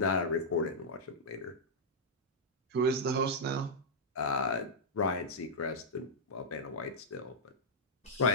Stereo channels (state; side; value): normal; both; correlation -0.09